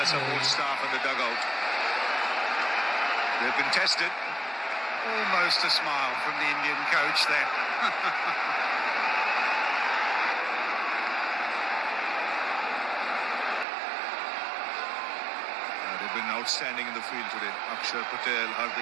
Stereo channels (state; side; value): drops out; left; at 13.7 s